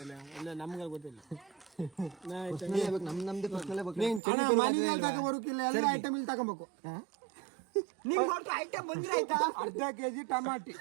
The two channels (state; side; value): drops out; left; at 4.2 s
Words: ಎಲ್ಲ ನಮ್ಗೆ ಗೊತ್ತಿಲ್ಲ. ನಮ್ದು ತಗೋಬರೋಕಿಲ್ಲ, ಎಲ್ಲ ಐಟಮ್ ಇಲ್ಲಿ ತಗೋಬೇಕು. ಐಟಮ್ ಬಂದ್ರೆ ಆಯ್ತಾ? ಅರ್ಧ ಕೆಜಿ ಟಮಾಟಿ.